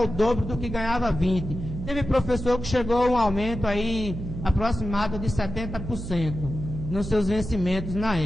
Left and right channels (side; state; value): right; noise; hum, 8 dB below the sound